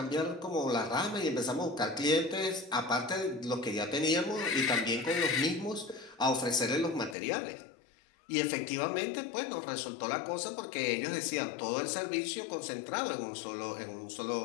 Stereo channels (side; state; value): right; drops out; at 7.2 s